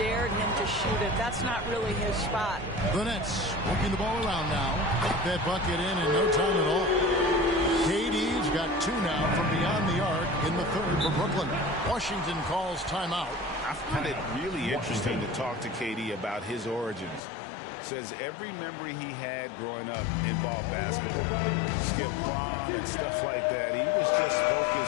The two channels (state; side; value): drops out; right; at 17.2 s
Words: him to shoot it. That's not really his spot. The Nets working the ball around now. That bucket in no time at all. KD KD's got 2 now from beyond the arc in the third for Brooklyn. Washington calls timeout. I find it really interesting to talk to KD about his origins. Says every memory he had growing up involved basketball. Skip prom and stuff like that. He was just